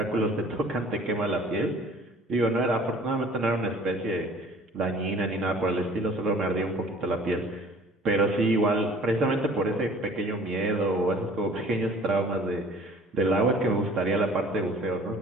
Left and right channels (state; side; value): normal; both; correlation 0.51